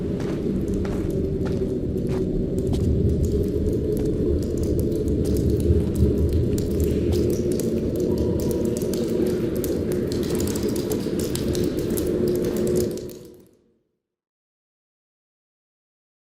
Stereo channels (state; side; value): identical; both; correlation 1.00